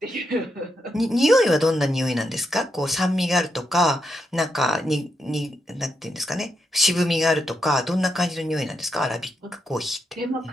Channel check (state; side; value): normal; both; correlation 0.82